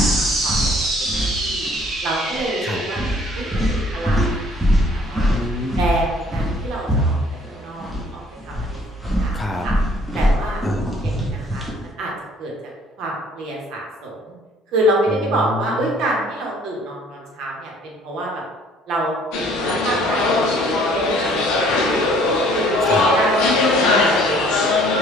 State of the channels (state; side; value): normal; both; correlation 0.57